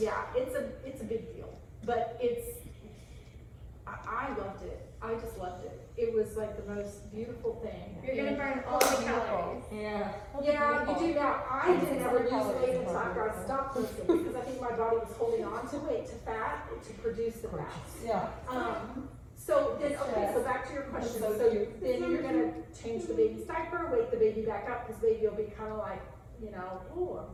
it's a big deal, but I loved it. I just loved it. It was like the most beautiful thing. You're gonna burn all the calories. Yeah. Yeah, you do now. I didn't ever lose weight until after I stopped lifting because I think my body was holding on to weight, to fat, to produce the fat. Yeah. So then, okay, so back to your question. So then you're gonna change the baby's diaper, wake the baby back up, because baby will be kind of like, you know, oh, I'm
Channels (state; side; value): identical; both; correlation 1.00